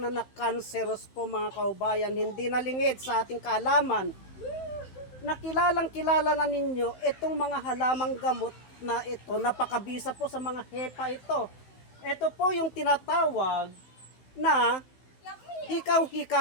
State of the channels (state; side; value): late; right; 16 ms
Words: cancerous po mga kaubayan, hindi nalingid sa ating kaalaman. Nakilalang kilala na ninyo itong mga halamang gamot na ito, napakabisa po sa mga hepa ito. Ito po yung tinatawag na